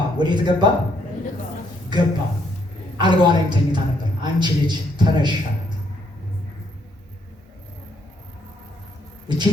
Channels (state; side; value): normal; both; correlation 0.72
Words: ወዴት ገባ? ገባ። አልጋዋ ላይም ተኝታ ነበር። አንቺ ልጅ ተነሽ አላት። እቺ